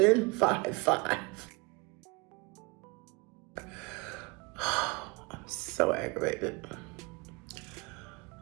5'5". I'm so aggravated.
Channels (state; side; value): quieter; left; 27.5 dB